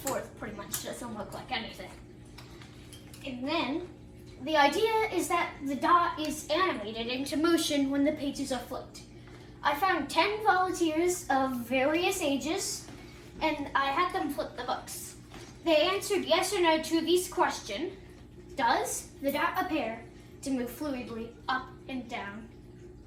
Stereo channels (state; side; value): identical; both; correlation 1.00